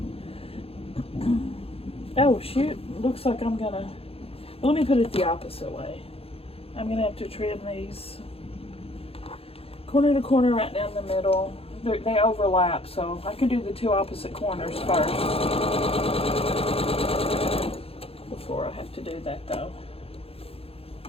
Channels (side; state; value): right; late; 0.28 ms